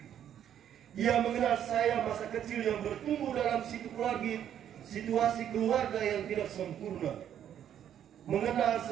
Ia mengenal saya masa kecil yang bertumbuh dalam situasi keluarga yang tidak sempurna. Mengenal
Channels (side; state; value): left; quieter; 9.9 dB